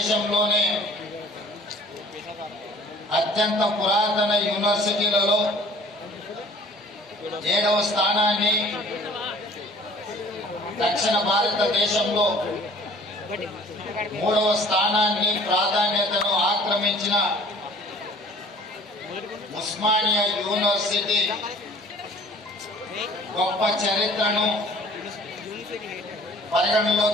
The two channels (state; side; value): normal; both; correlation 0.50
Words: అత్యంత పురాతన యూనివర్సిటీలలో 7వ స్థానాన్ని, దక్షిణ భారతదేశంలో 3వ స్థానాన్ని ప్రాధాన్యతను ఆక్రమించిన ఉస్మానియా యూనివర్సిటీ గొప్ప చరిత్రను